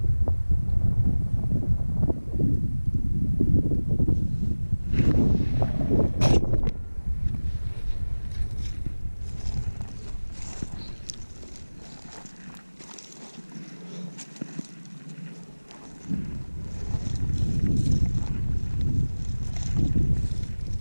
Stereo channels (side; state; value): both; inverted; correlation -1.00